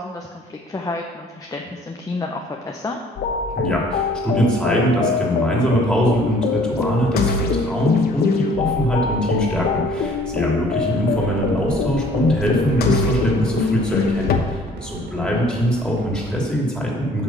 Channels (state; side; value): normal; both; correlation 0.55